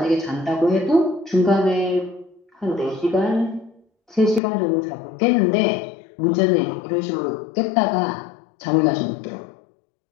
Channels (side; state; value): right; drops out; at 4.4 s